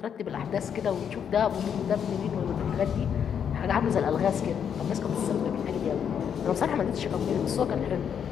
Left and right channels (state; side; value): quieter; right; 8.0 dB